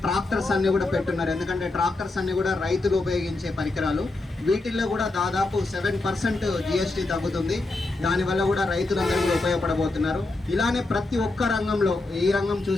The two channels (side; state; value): right; quieter; 3.1 dB